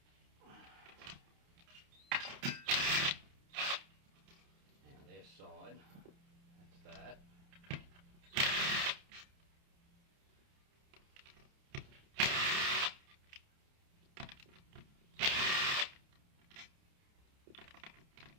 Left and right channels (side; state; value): left; late; 29 ms